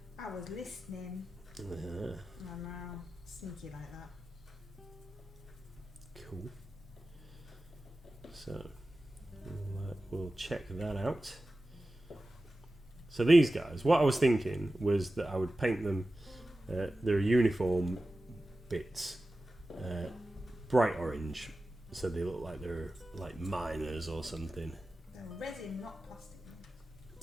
I was listening. I'm now sneaky like that. Cool. So we'll check that out. So these guys, what I was thinking was that I would paint them their uniform bits bright orange, so they look like they're like miners or something. They're resin, not plastic.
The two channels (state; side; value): normal; both; correlation 0.94